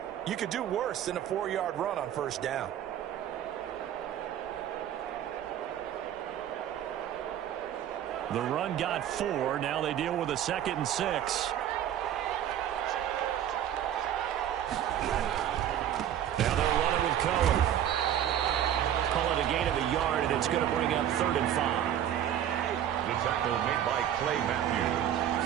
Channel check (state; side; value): quieter; left; 10.7 dB